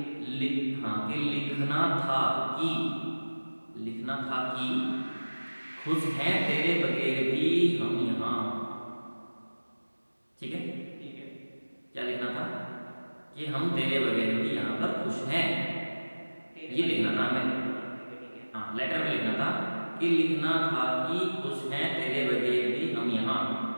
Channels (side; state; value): both; inverted; correlation -1.00